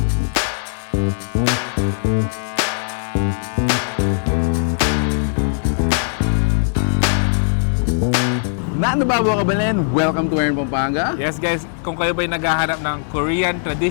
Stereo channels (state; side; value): silent; right; digital silence